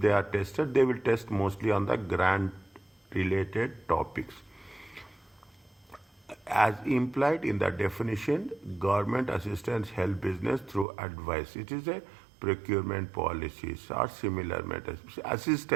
they are tested, they will test mostly on the grant related topics. As implied in the definition, government assistance help business through advice. It is a procurement policies or similar matters.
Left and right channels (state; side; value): drops out; left; at 10.9 s